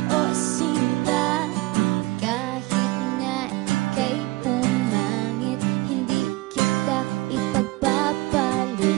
o sinta. Kahit na ika'y pumangit, hindi kita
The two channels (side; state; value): left; quieter; 21.3 dB